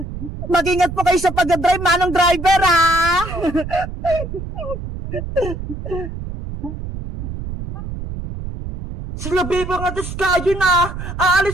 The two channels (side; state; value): right; noise; rumble, 8 dB below the sound